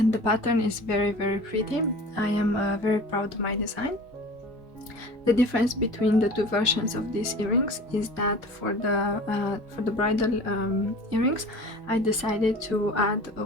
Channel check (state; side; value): normal; both; correlation 0.40